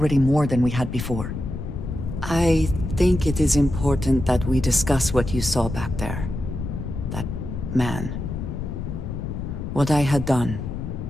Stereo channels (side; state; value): left; noise; rumble, 6 dB below the sound